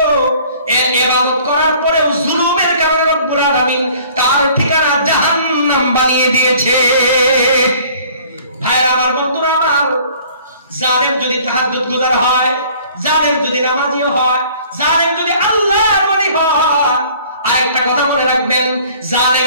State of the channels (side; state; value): both; inverted; correlation -0.53